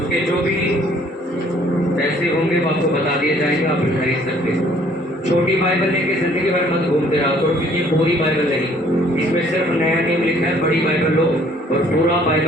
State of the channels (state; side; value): normal; both; correlation 0.59